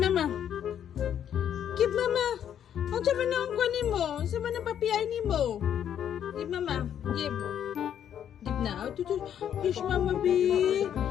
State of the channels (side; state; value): right; quieter; 9.5 dB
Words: mama. Give mama. Ang sabi na ang kuha ni mo. Ang sabi na papiyay ni mo. Give mama. Give. Give na. Oh, tutu. Kiss mama B.